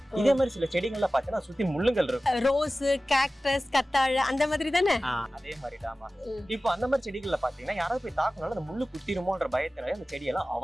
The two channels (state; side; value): normal; both; correlation 0.96